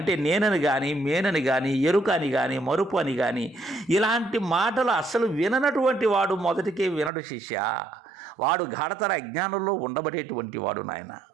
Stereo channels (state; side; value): drops out; left; at 7.1 s